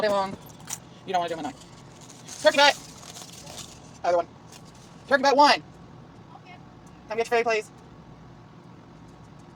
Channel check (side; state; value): both; identical; correlation 1.00